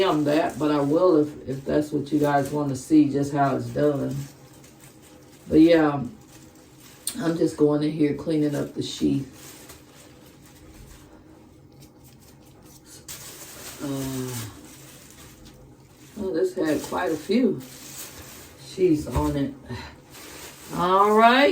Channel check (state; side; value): identical; both; correlation 1.00